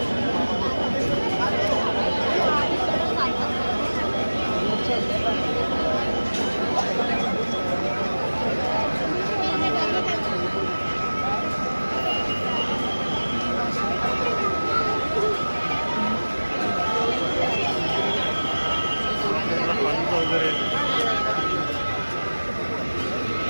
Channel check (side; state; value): both; inverted; correlation -1.00